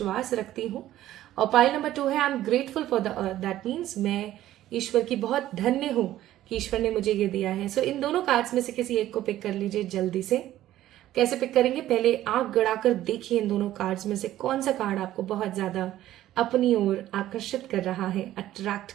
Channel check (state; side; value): quieter; left; 13.7 dB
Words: रखती हूँ। और पाइल नंबर 2 है, I am grateful for the earth, that means मैं ईश्वर की बहुत धन्य हूं कि ईश्वर ने मुझे ये दिया है। सो इन दोनों कार्ड्स में से किसी एक को पिक कर लीजिए जल्दी से। कैसे पिक करेंगे, पहले आंख गड़ाकर देखिए इन दोनों कार्ड्स में से कौन सा कार्ड आपको बहुत ज्यादा अपनी ओर आकर्षित कर रहा है, अट्रैक्ट